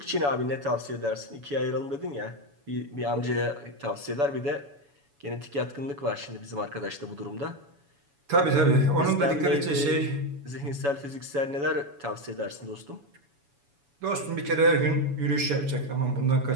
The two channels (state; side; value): late; left; 7.1 ms